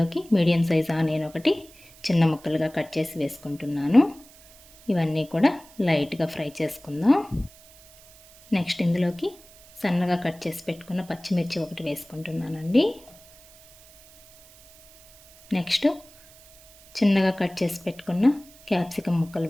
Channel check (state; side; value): noise; right; hiss, 24 dB below the sound